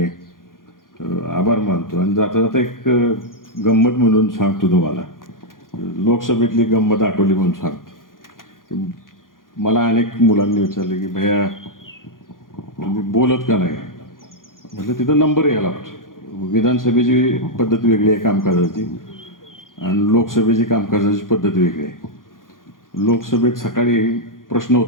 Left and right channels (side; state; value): right; late; 0.90 ms